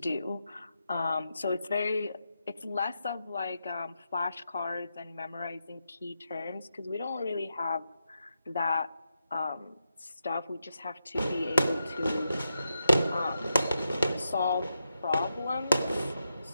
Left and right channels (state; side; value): inverted; both; correlation -0.86